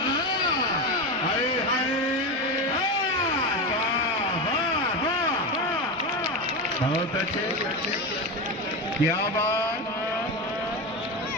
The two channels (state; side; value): normal; both; correlation 0.18